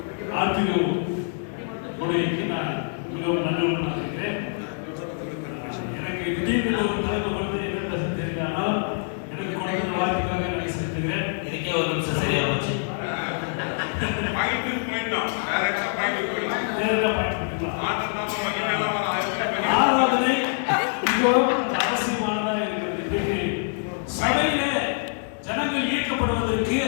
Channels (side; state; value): right; silent; 62 dB below the other